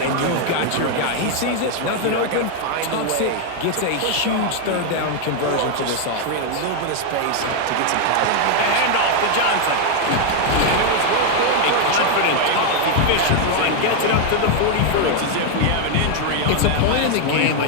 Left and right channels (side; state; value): both; different; correlation 0.01